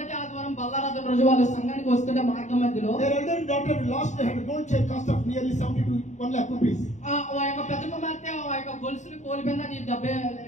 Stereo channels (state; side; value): late; right; 0.34 ms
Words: ఆదివారం బల్లారాధన రోజు వాళ్ళు సంఘానికి వస్తుంటే మార్గం మధ్యలో their elder daughter lost her gold chain cost of nearly 70 to 1 lakh rupees. ఆ యొక్క పెద్ద కుమార్తె ఆ యొక్క గొలుసుని కోల్పోయింది. అది